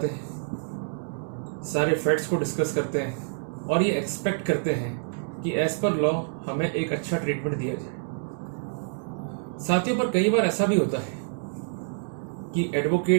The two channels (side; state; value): left; silent; digital silence